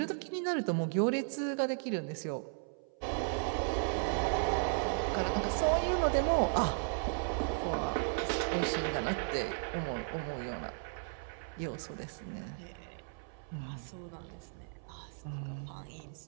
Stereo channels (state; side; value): silent; left; 54 dB below the other